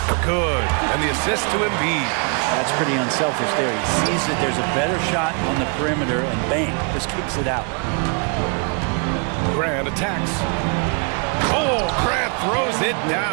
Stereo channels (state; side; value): quieter; left; 36.9 dB